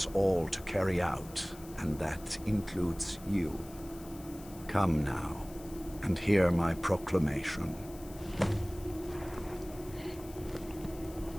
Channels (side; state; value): left; noise; hiss, 19 dB below the sound